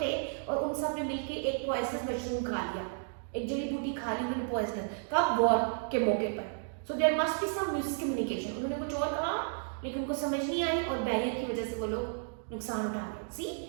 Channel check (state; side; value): silent; left; digital silence